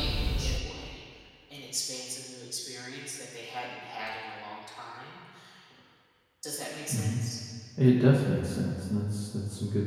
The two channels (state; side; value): identical; both; correlation 1.00